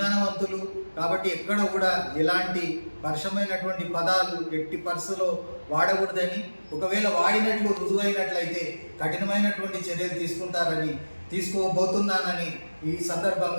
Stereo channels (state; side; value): inverted; both; correlation -1.00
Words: కాబట్టి ఎక్కడ కూడా ఎలాంటి పరుషమైనటువంటి పదాలు ఎట్టి పరిస్థితుల్లో వాడకూడదని, ఒకవేళ వాడినట్లు రుజువైనట్లయితే కఠినమైనటువంటి చర్యలు తీసుకోబోతున్నానని ఈ